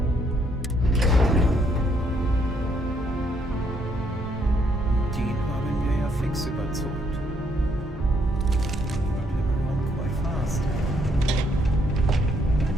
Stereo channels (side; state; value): both; normal; correlation 0.71